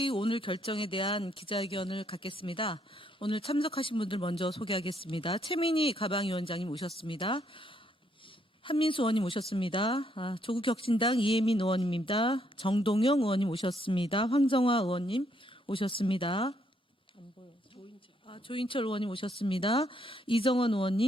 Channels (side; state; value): both; normal; correlation 0.72